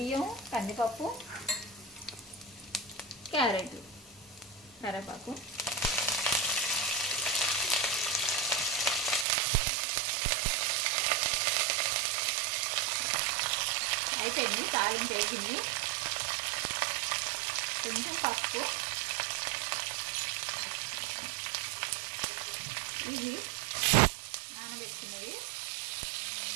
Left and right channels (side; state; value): left; drops out; at 9.2 s